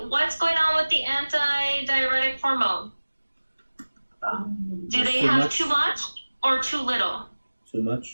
what's going on with the antidiuretic hormone? Do they have too much or too little? Too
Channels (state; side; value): inverted; both; correlation -1.00